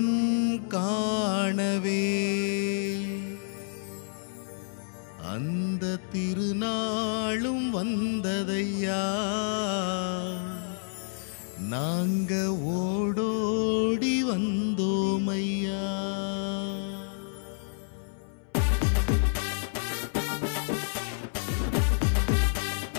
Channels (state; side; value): silent; right; 59 dB below the other